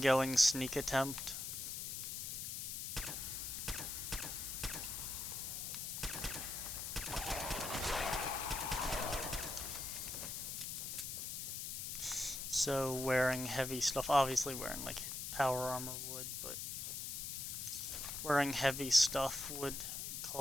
sneak attempt. So wearing heavy stuff, obviously wearing like power armor would, but wearing heavy stuff would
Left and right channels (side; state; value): left; noise; hiss, 4 dB below the sound